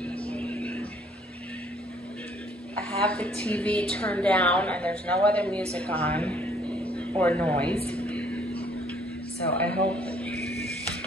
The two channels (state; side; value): normal; both; correlation 0.61